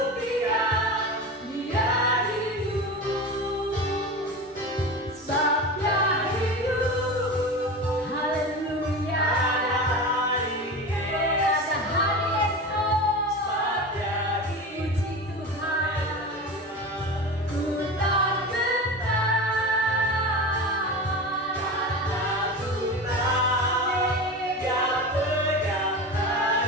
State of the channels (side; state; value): both; normal; correlation 0.28